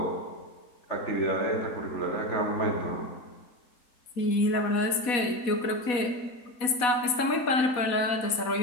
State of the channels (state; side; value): late; right; 4.1 ms